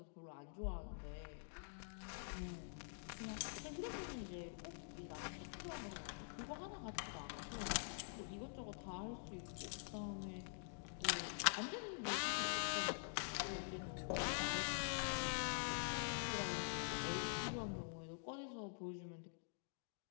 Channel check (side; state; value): right; silent; digital silence